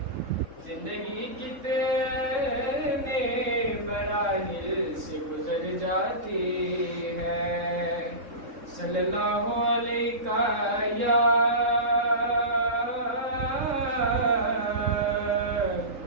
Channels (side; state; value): left; late; 3.7 ms